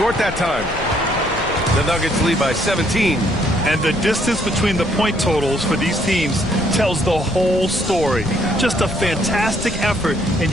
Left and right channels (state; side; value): noise; left; rumble, 12 dB below the sound